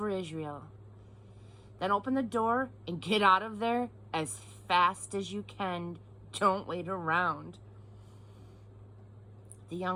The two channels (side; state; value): both; identical; correlation 1.00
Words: Israel.' Then open the door and get out of there as fast as you can. Don't wait around." The